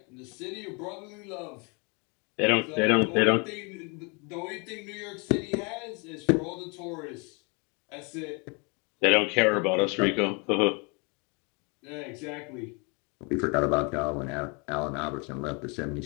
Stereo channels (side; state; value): right; quieter; 32.1 dB